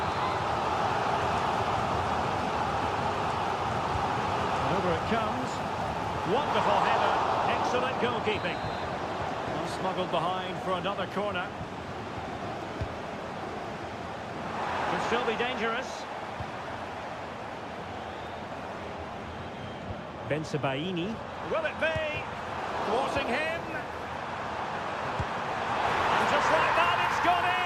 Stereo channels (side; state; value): both; identical; correlation 1.00